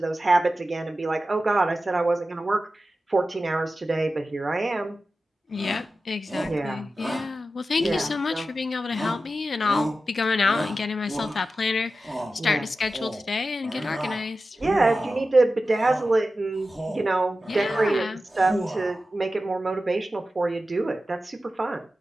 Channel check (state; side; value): normal; both; correlation 0.93